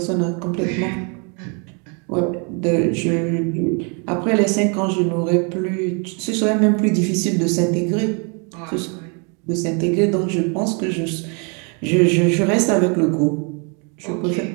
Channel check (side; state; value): left; quieter; 35.7 dB